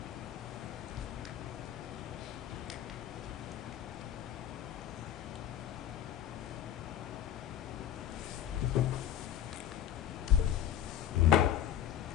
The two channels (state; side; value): quieter; right; 10.7 dB